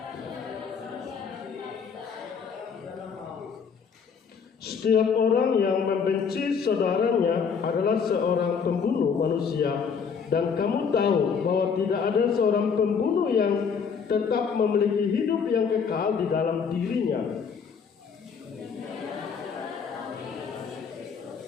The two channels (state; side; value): quieter; right; 6.2 dB